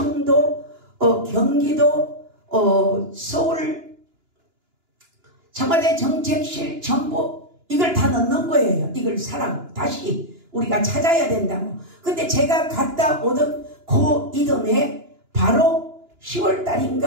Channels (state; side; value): late; left; 2.9 ms